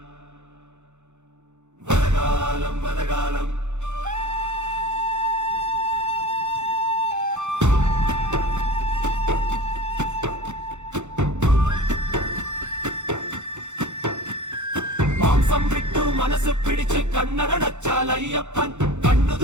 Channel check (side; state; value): left; late; 0.83 ms